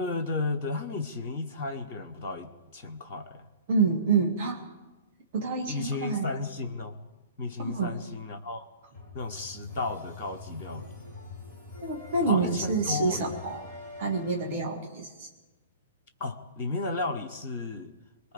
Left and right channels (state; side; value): inverted; both; correlation -0.43